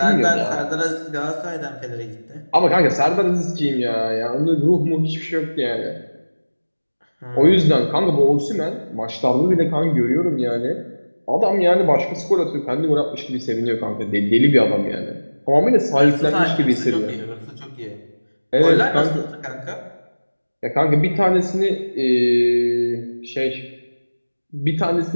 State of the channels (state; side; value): inverted; both; correlation -1.00